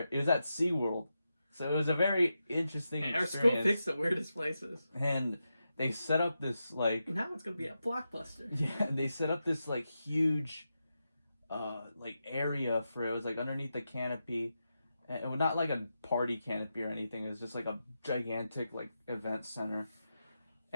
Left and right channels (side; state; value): both; inverted; correlation -0.88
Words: It was at SeaWorld. So it was a very interesting Our experience. school picks the weirdest places. And they set up this like... Now it's going to be a blockbuster. Yeah, they set up this like huge like area for it. It was like underneath the canopy. And it was not like a party canopy or anything. It was just like a gigantic like event center.